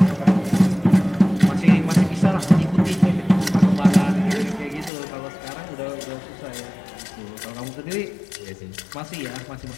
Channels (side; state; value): right; drops out; at 4.9 s